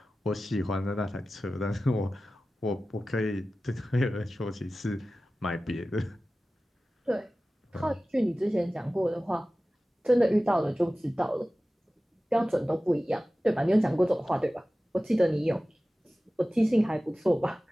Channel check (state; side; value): normal; both; correlation 0.96